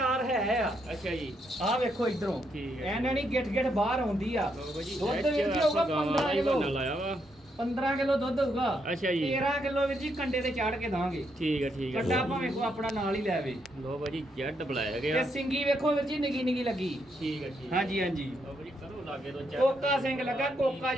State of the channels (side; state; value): both; normal; correlation 0.77